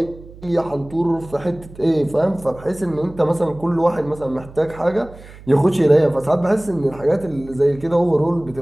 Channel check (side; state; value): right; noise; hum, 19 dB below the sound